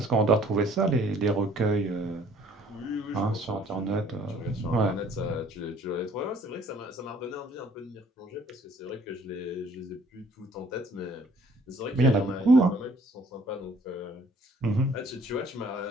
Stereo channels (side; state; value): both; normal; correlation 0.58